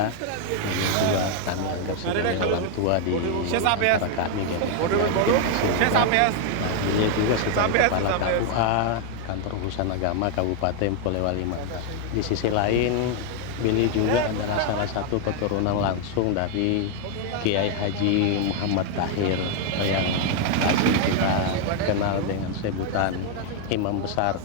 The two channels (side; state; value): both; different; correlation 0.00